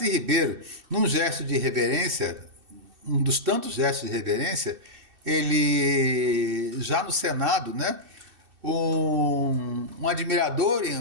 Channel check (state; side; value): late; left; 2.6 ms